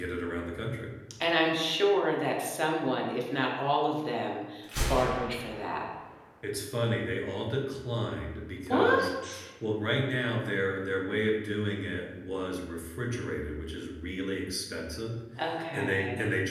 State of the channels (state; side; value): identical; both; correlation 1.00